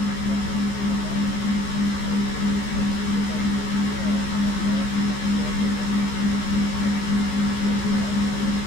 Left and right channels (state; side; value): late; right; 15 ms